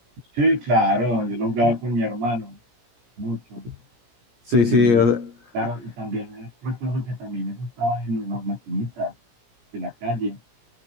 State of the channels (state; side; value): late; left; 17 ms